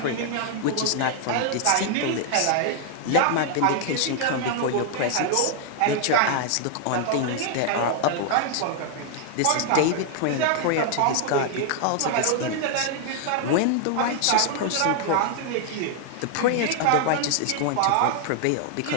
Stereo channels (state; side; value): different; both; correlation 0.00